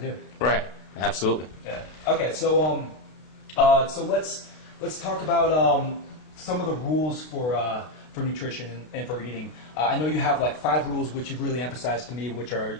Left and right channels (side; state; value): right; late; 32 ms